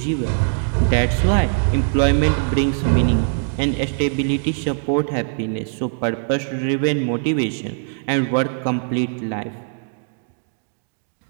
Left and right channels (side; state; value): left; silent; 65 dB below the other